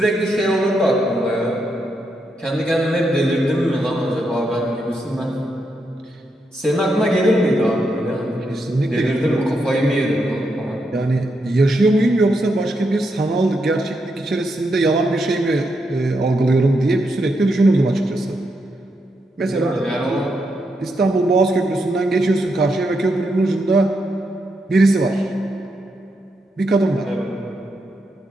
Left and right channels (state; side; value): normal; both; correlation 0.82